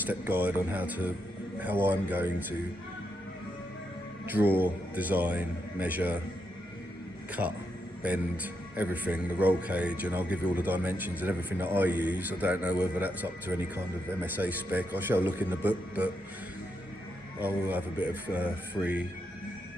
guide on how I'm going to draw, design, measure, cut, bend, everything, the roll cage, and I'll give you all the dimensions and everything that I use. I don't know whether that's up to any kind of MSA spec. I shall look in the book, but I will have a bit of free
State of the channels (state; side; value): normal; both; correlation 0.82